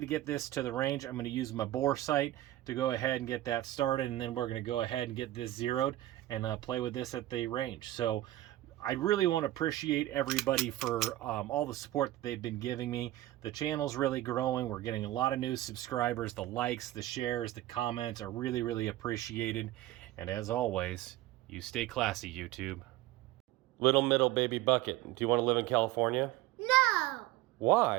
get this to the range. I'm going to use my bore sight to go ahead and get that started, and then we're going to go ahead and get this zeroed and play with this at the range. So I really want to appreciate everybody for all the support that they've been giving me. The channel's really growing. We're getting a lot of new subscribers. The likes, the shares, the comments are really, really appreciated. And as always, you stay classy, YouTube. Little middle baby bucket. Do you want to live in California? No!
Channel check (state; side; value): quieter; left; 15.5 dB